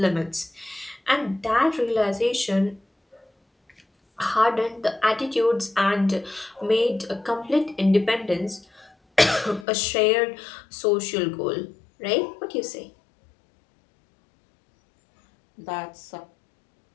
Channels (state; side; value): drops out; right; at 9.7 s